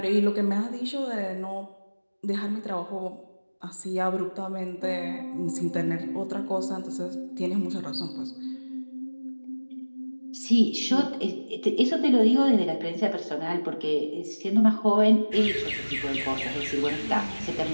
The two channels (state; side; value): inverted; both; correlation -1.00